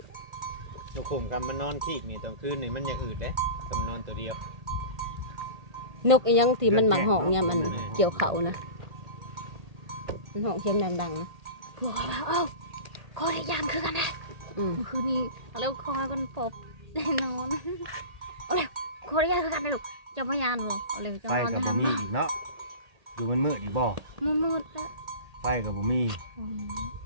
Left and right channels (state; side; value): late; left; 1.8 ms